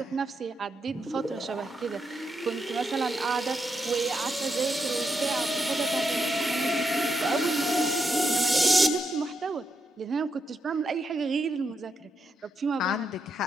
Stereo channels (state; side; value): normal; both; correlation 0.82